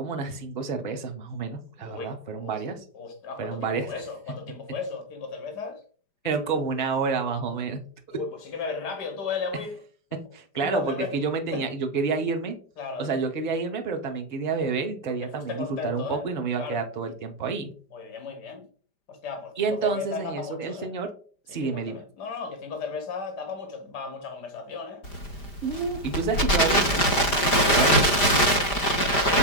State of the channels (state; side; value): late; right; 5.0 ms